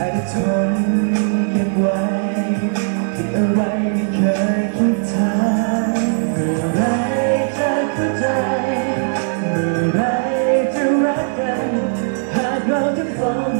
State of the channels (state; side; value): silent; left; 58 dB below the other